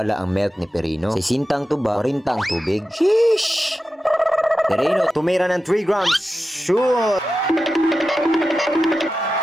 ang milk ni Perino. 60 ang tuba, 40 ang tubig. Sheesh! Perino, tumira ng 3 grams. Shoot!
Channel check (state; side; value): normal; both; correlation 0.92